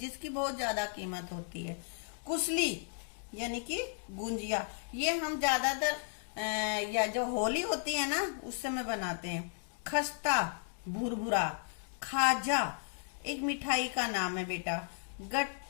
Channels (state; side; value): silent; right; 55 dB below the other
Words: बहुत ज्यादा कीमत होती है। कुसली यानी कि गुंजिया, ये हम ज्यादातर या जो होली होती है ना उस समय बनाते हैं। खस्ता भुरभुरा। खाजा एक मिठाई का नाम है बेटा।